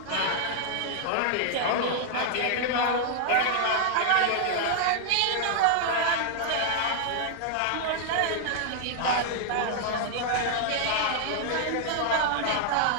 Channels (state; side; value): different; both; correlation -0.01